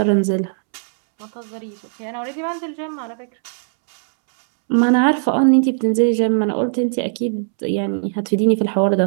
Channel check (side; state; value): left; silent; 67 dB below the other